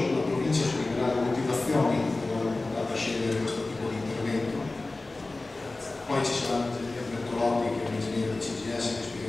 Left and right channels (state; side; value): quieter; right; 3.2 dB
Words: la provincia spiegherà le motivazioni per aver andato a scegliere questo tipo di intervento. Poi ci sarà l'ingegner Bertolotti, che è un ingegnere del CGS, che